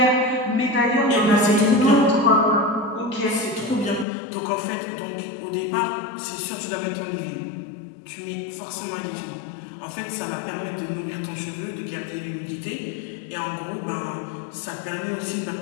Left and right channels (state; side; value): drops out; right; at 4.0 s